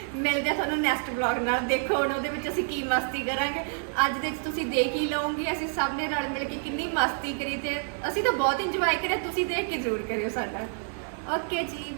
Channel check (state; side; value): silent; left; 59 dB below the other